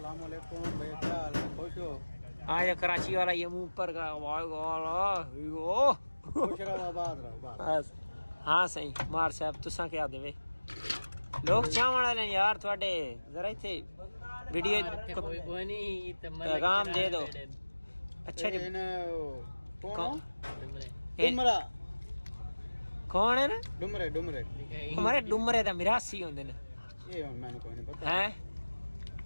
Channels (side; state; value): both; inverted; correlation -1.00